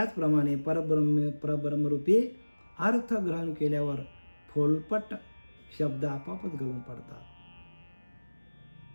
परब्रह्मरूपी अर्थ ग्रहण केल्यावर फोलपट शब्द आपोआपच गळून पडतात.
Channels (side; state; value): both; inverted; correlation -1.00